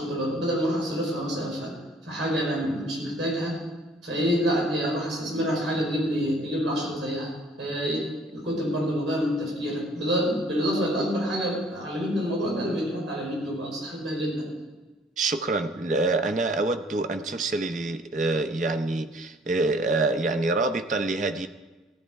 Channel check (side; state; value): both; normal; correlation 0.58